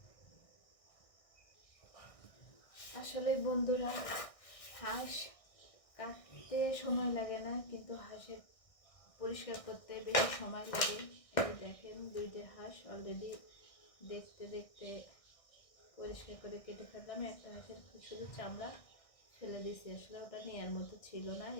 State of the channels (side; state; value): right; late; 1.6 ms